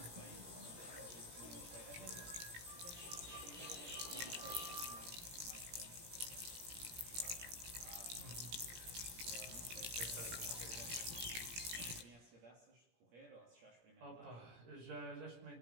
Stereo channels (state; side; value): late; left; 17 ms